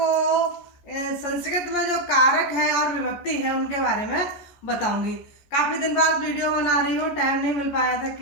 संस्कृत में जो कारक हैं और विभक्ति है उनके बारे में बताऊंगी। काफ़ी दिन बाद वीडियो बना रही हूँ, टाइम नहीं मिल पाया था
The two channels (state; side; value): late; right; 14 ms